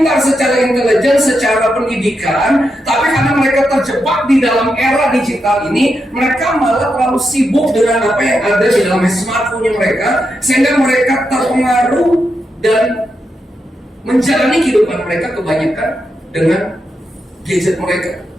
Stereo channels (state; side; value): normal; both; correlation 0.85